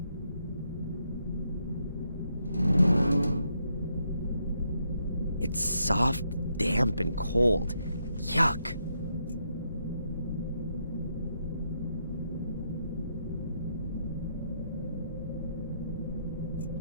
It's soft, damp, and cold. Yuck.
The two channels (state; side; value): inverted; both; correlation -0.77